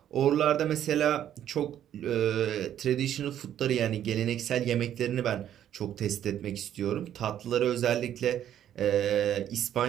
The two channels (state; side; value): quieter; left; 10.7 dB